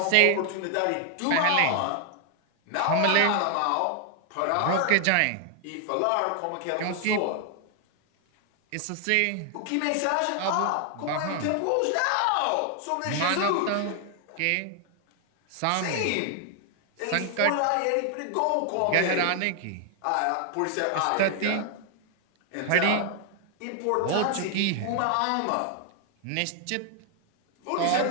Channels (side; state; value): both; different; correlation 0.00